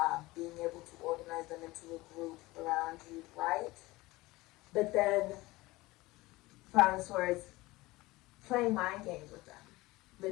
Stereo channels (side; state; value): right; quieter; 20.2 dB